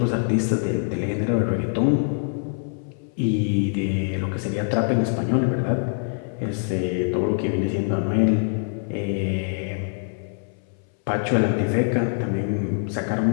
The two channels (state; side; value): silent; right; 60 dB below the other